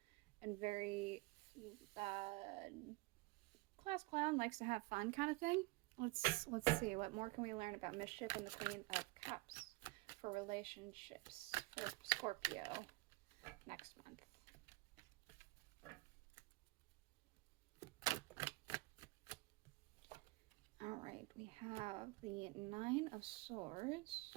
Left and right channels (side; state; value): left; quieter; 23.6 dB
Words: and very class clown, likes to have fun kind of thing. Let's see, what more can we learn about mischief and the Queen of Cups for relationships for Scorpio next month. All right, we have the Nine of Swords.